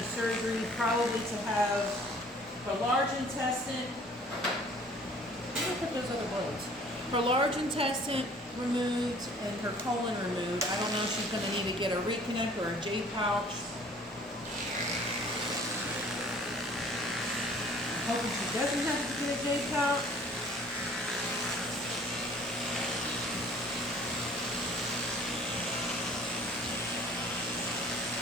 surgery probably to have her large intestine. Where did I put those other bullets? Her large intestine removed and her colon removed. I don't know if she's going to need to get a reconnect or a J pouch. I'm hoping she doesn't have to get a J pouch.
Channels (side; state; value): both; normal; correlation 0.53